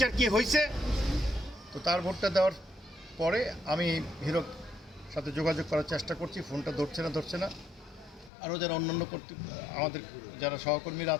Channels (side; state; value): right; drops out; at 8.3 s